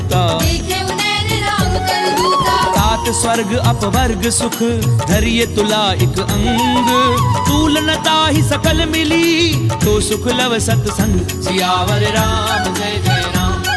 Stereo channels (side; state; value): both; identical; correlation 1.00